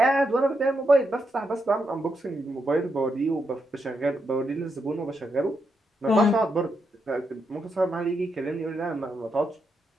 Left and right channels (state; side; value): normal; both; correlation 0.82